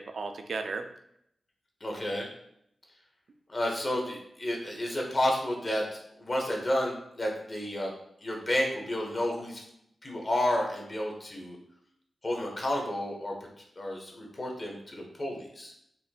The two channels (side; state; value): both; normal; correlation 0.92